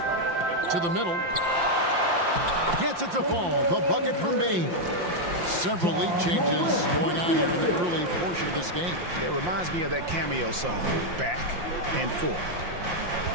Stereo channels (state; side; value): late; left; 5.7 ms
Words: To the middle. Gets it to fall. The bucket from Bane. Several lead changes going on here in the early portion of this game. It reminds me of that cameo song, Back and Forth.